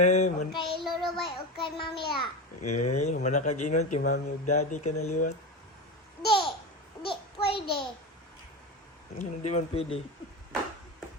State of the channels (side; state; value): both; normal; correlation 0.22